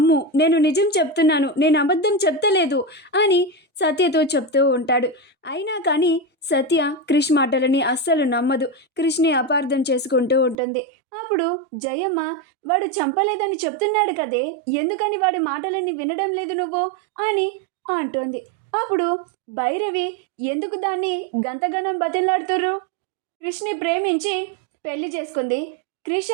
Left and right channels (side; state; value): left; drops out; at 10.6 s